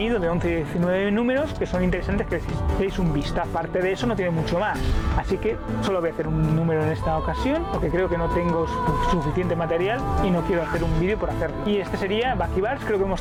de 11 y 19 números, que son interesantes, que deis un vistazo. Aparte de eso no tiene mucho más, así que solo voy a hacer un número en esta ocasión porque creo que no tengo suficiente material y no quiero hacer un un vídeo por hacerlo. Y este sería Bucky Barnes. Creo que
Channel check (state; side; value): identical; both; correlation 1.00